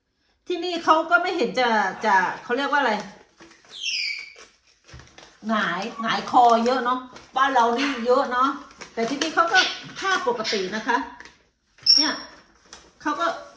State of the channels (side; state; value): both; identical; correlation 1.00